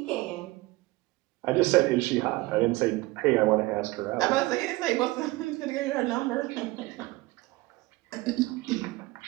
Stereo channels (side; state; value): left; quieter; 20.8 dB